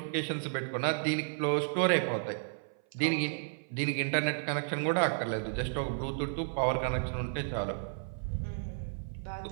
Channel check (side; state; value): left; silent; 56 dB below the other